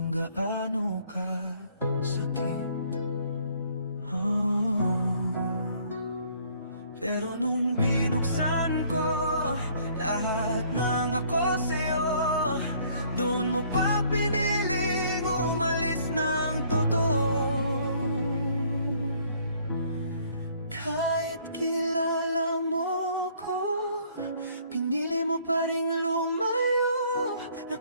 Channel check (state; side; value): inverted; both; correlation -0.61